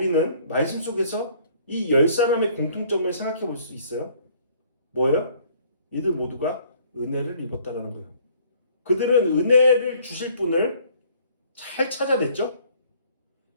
말씀 속에서 이 10사람의 공통점을 생각해 볼 수 있어요. 뭐예요? 이들 모두가 은혜를 입었다라는 거예요. 그들은 은혜를 주실 분을 잘 찾아냈죠.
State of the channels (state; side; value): inverted; both; correlation -0.58